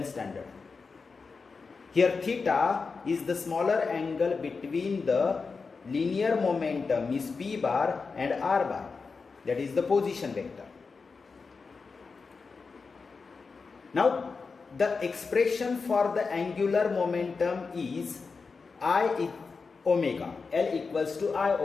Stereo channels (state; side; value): quieter; right; 4.7 dB